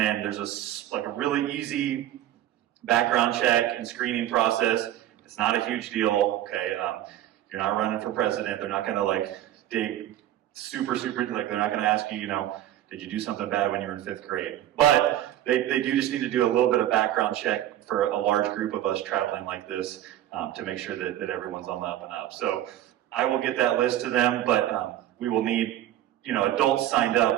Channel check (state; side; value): quieter; left; 12.7 dB